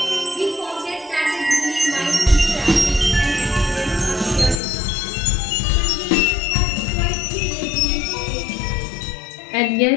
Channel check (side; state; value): right; drops out; at 4.6 s